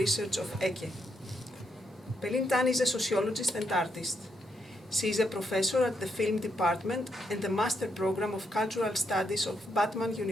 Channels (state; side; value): normal; both; correlation 0.79